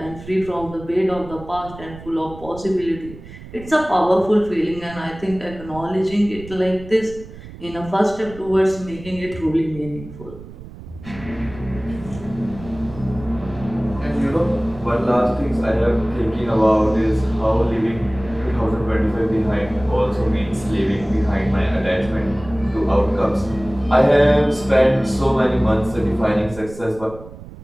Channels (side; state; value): right; noise; rumble, 16 dB below the sound